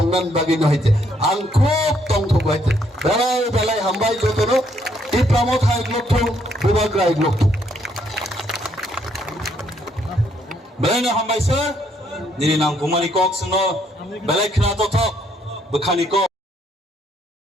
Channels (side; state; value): both; normal; correlation 0.70